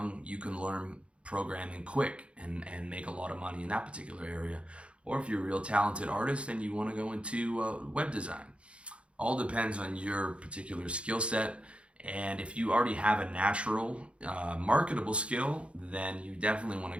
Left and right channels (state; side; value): late; left; 0.059 ms